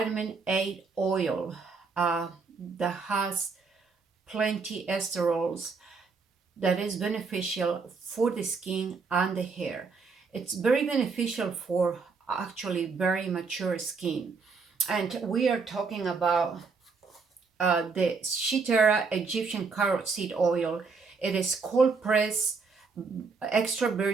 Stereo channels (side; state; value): left; quieter; 4.7 dB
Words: A oil that has plenty esterols that is beneficial for the skin and the hair. It's very beneficial for actually very mature skin. And we are talking about the Shitera Egyptian carrot seed oil. It is cold pressed extra